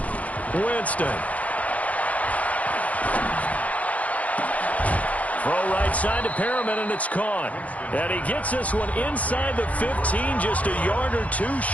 Winston. Throw right side to Perriman, and it's caught. And he gets this one inside the 15, just a yard or two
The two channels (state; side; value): late; right; 0.068 ms